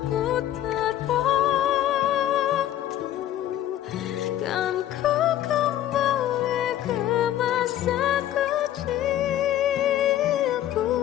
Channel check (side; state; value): right; quieter; 12.4 dB